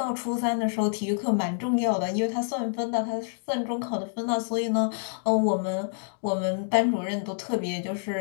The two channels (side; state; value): right; silent; digital silence